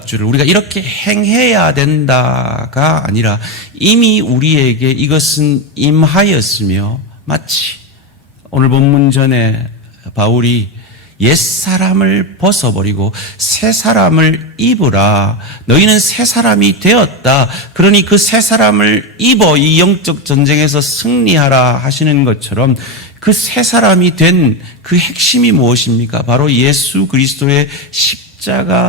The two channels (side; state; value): both; normal; correlation 0.12